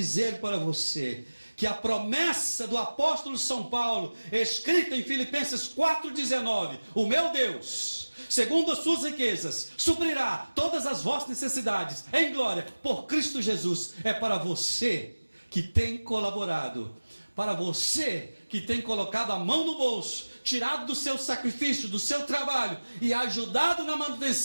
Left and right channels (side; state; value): both; inverted; correlation -1.00